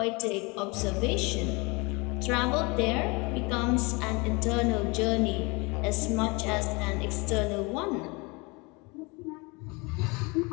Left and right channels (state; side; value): quieter; right; 27.3 dB